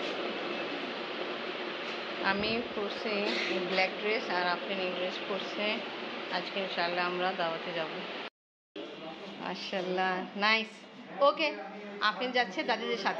আমি পরছি ব্ল্যাক ড্রেস আর আপনি এই ড্রেস পরছে। আজকে ইনশাল্লাহ আমরা দাওয়াতে যাব। মাশাআল্লাহ, নাইস। ওকে, আপনি যাচ্ছে দাদিদের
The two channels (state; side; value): identical; both; correlation 1.00